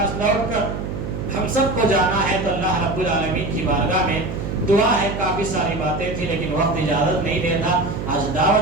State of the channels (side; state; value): right; noise; hum, 6 dB below the sound